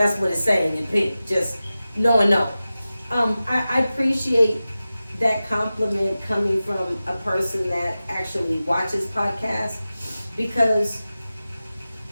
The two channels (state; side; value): inverted; both; correlation -0.95